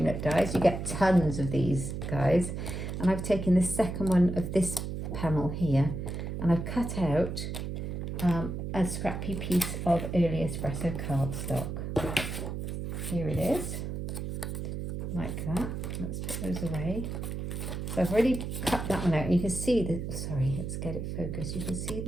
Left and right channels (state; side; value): noise; right; hum, 5 dB below the sound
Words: dies. You get tons of these guys. And I've taken the second one of this panel here, and I've cut out a scrappy piece of early espresso cardstock. Here it is, like that. Let's put those away. So I've already cut that one out, and you can see the, sorry, let's get it focused. You can see